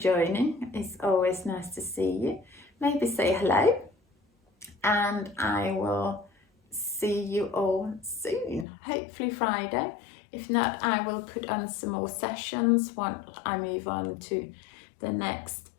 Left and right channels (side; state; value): right; drops out; at 8.7 s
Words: It's always nice to see you. Maybe say hello, and I will see you all soon, hopefully Friday. If not, I will put on some more sessions once I move on to the next